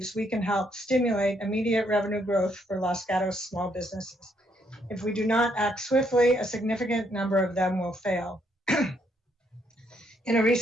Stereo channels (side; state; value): both; normal; correlation 0.72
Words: we can help stimulate immediate revenue growth for Los Gatos small businesses. If we do not act swiftly, a significant number of them will fail. In a